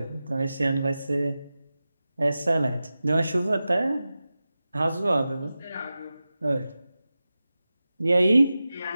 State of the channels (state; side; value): inverted; both; correlation -0.94